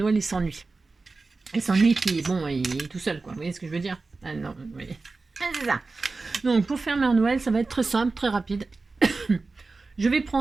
il s'ennuie. Il s'ennuie puis bon il est tout seul quoi, vous voyez ce que je veux dire? Ah non, vous voyez. Ah, c'est ça. Donc pour faire Mère Noël ça va être très simple, très rapide. Je vais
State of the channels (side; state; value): left; quieter; 3.8 dB